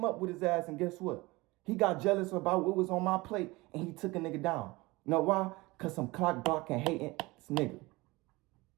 up with his ass, and guess what? He got jealous about what was on my plate, and he took a nigga down. You know why? Because some clock blocking, hating this nigga.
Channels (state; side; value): quieter; left; 22.1 dB